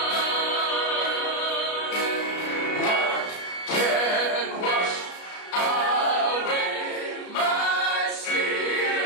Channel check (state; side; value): late; right; 33 ms